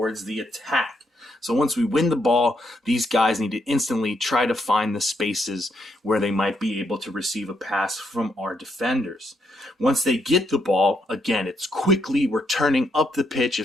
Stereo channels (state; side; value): normal; both; correlation 0.76